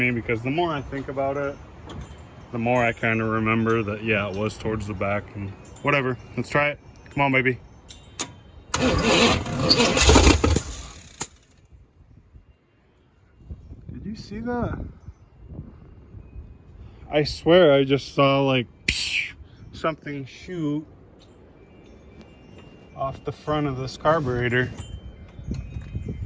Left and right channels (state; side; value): identical; both; correlation 1.00